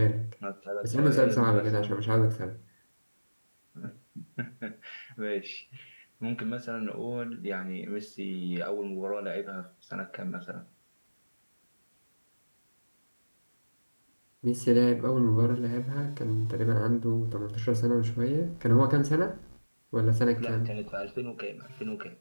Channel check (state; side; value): inverted; both; correlation -1.00